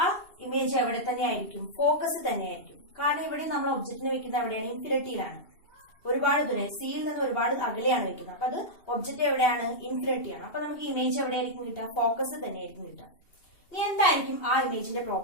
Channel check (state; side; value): late; right; 2.8 ms